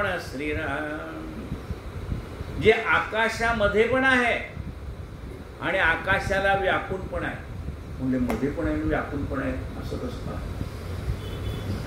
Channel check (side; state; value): both; identical; correlation 1.00